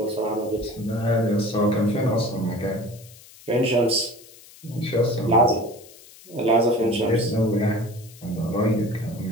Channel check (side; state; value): left; noise; hiss, 22 dB below the sound